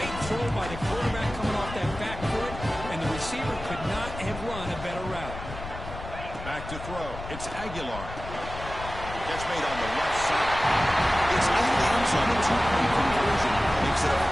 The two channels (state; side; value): noise; left; rumble, 11 dB below the sound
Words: throw by the quarterback coming off that back foot, and the receiver could not have run a better route. Back to throw. It's Aguilar. Catch made on the left side. It's in the end zone. A 2-point conversion makes it a